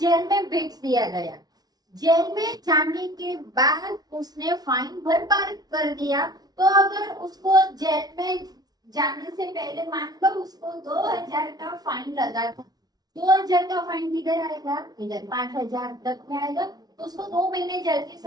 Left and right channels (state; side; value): late; left; 0.19 ms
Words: में भेज दिया गया, जेल में जाने के बाद उसने फाइन भरपाई कर दिया, तो अगर उसको जेल में जाने से पहले मान लो उसको 2,000 का फाइन लगा था, 2,000 का फाइन किधर आएगा, इधर 5,000 तक में आएगा, तो उसको 2 महीने जेल की